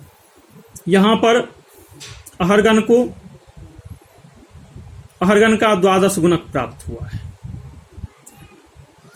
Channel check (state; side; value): identical; both; correlation 1.00